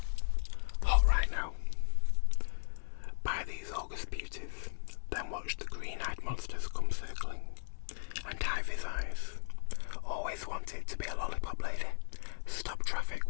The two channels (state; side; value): silent; right; digital silence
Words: Hot right now. Buy these August beauties, then watch the green-eyed monsters come circling, and dive his eyes. Always wanted to be a lollipop lady. Stop traffic